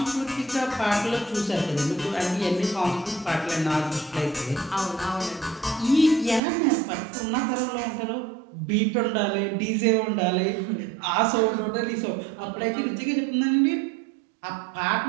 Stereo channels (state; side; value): drops out; left; at 6.4 s